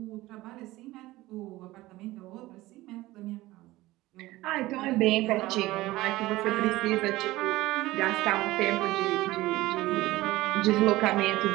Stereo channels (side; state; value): left; quieter; 18.1 dB